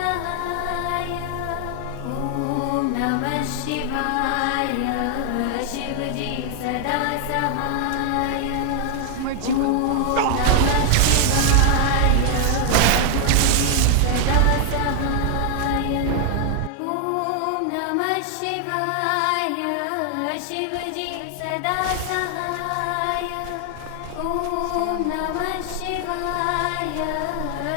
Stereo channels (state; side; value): different; both; correlation 0.00